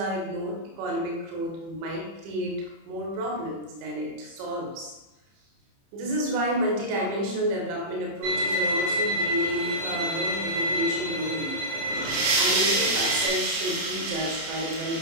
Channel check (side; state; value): left; late; 30 ms